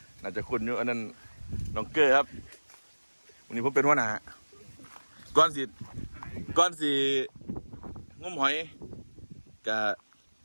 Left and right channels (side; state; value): both; inverted; correlation -1.00